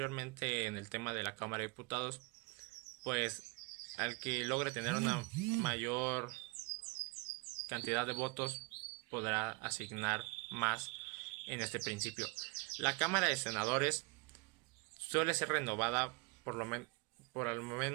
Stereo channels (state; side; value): quieter; left; 27.1 dB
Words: en el tema de la Cámara de Diputados, pues al que logre tener una mayor cantidad de votos podrá asignar más en este principio. La Cámara de Senadores suele ser renovada por al